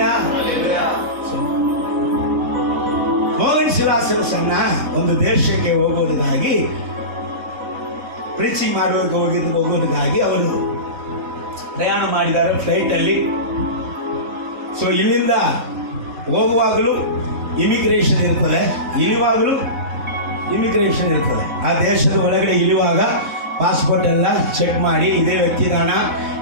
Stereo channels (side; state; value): left; late; 4.1 ms